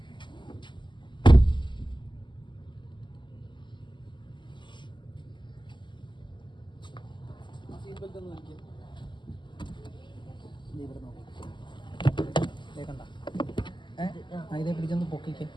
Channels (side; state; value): right; late; 0.23 ms